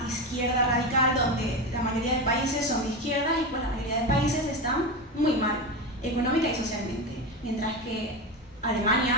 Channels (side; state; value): both; normal; correlation 0.19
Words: izquierda radical donde la mayoría de países son de izquierdas y pues la mayoría de países están muy mal, económica y socialmente, mientras que